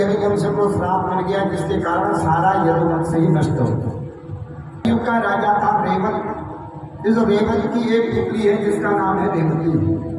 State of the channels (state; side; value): identical; both; correlation 1.00